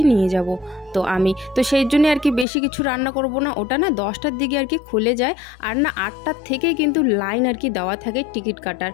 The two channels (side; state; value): right; drops out; at 2.5 s